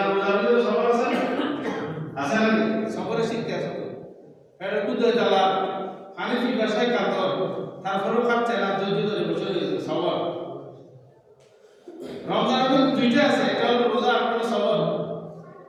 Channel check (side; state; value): both; identical; correlation 1.00